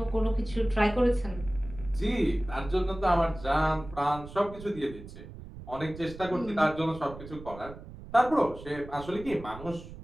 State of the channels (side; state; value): right; noise; rumble, 14 dB below the sound